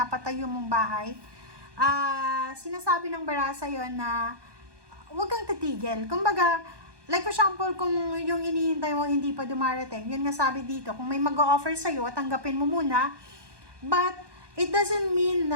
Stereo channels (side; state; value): left; late; 1.2 ms